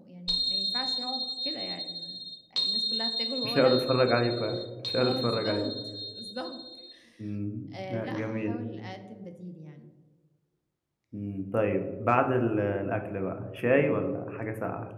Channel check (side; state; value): both; identical; correlation 1.00